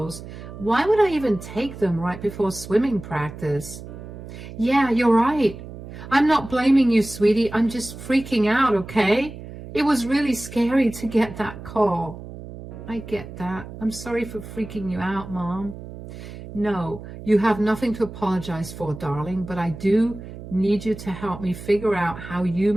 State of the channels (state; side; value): noise; right; hum, 13 dB below the sound